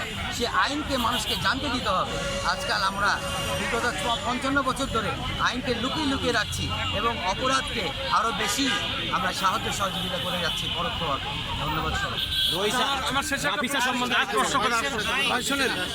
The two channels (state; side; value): identical; both; correlation 1.00